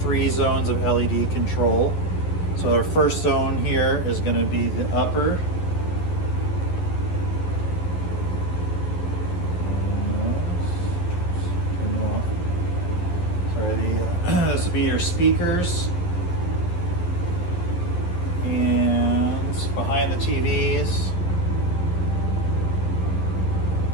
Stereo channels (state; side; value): late; right; 11 ms